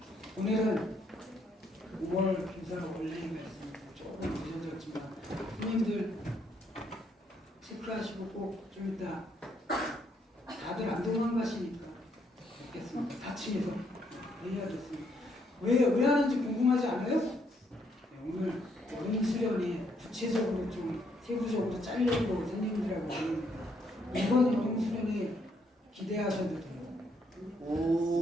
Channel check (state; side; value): normal; both; correlation 0.72